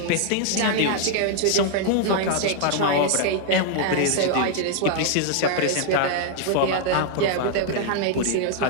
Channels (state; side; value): different; both; correlation 0.00